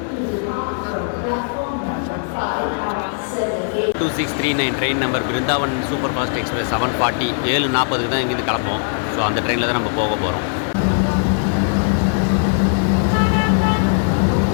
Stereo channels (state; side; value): silent; right; 60 dB below the other